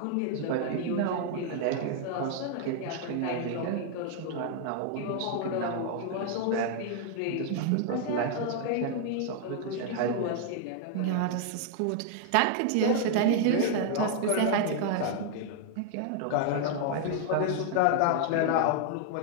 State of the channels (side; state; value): both; different; correlation 0.00